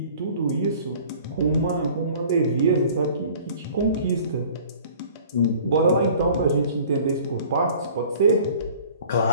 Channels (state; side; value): inverted; both; correlation -0.49